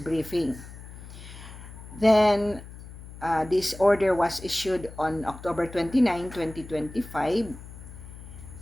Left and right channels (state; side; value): noise; left; hum, 15 dB below the sound